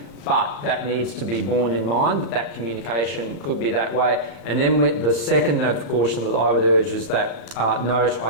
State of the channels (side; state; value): right; late; 34 ms